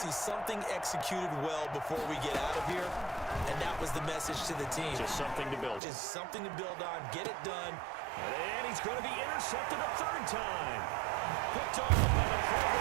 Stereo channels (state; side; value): drops out; left; at 5.8 s